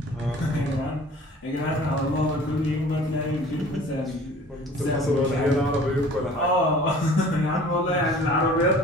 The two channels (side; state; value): both; normal; correlation 0.47